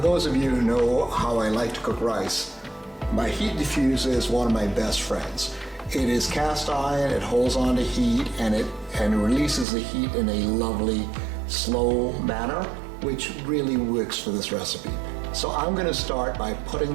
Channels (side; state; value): left; drops out; at 9.7 s